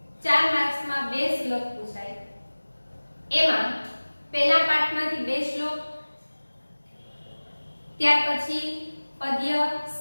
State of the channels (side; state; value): both; inverted; correlation -1.00